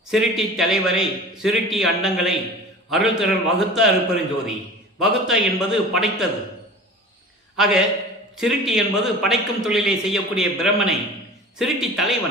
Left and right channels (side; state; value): both; normal; correlation 0.39